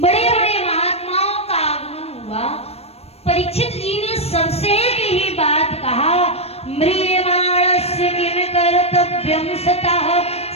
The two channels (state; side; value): late; right; 0.29 ms